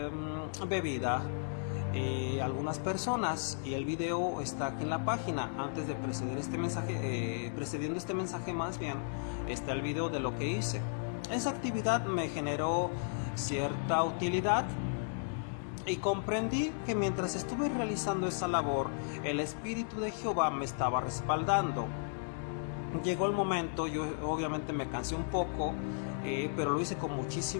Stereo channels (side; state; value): right; silent; digital silence